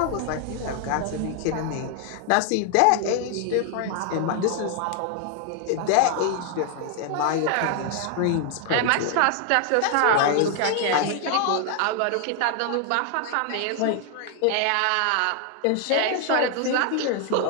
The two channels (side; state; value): both; different; correlation 0.00